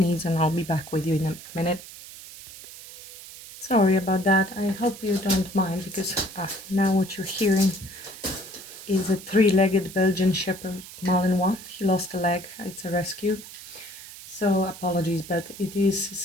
and I'll be back with you in a minute. Sorry about that. I hope you don't mind, because now what you're hearing is a three-legged Belgian Shepherd Malinois. He lost a leg. It's a rescue. So apologies, but it is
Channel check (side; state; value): right; noise; hiss, 15 dB below the sound